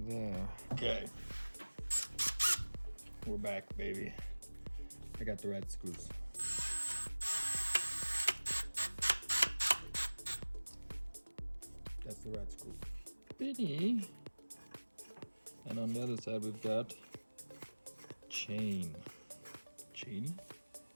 there. Okay. We're back, baby. I got the red screws. That's the red screw. Bitty. And on the other side we've got chain. Chainy?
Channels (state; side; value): inverted; both; correlation -1.00